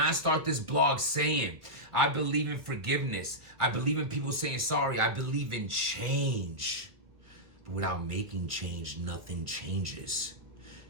start this blog saying, I believe in forgiveness. I believe in people saying sorry. I believe in change. But without making change, nothing changes.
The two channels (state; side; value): late; left; 1.6 ms